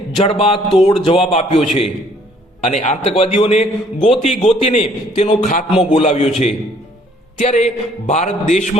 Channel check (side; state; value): both; normal; correlation 0.61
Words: જડબાતોડ જવાબ આપ્યો છે અને આતંકવાદીઓને ગોતીને તેનો ખાત્મો બોલાવ્યો છે. ત્યારે ભારત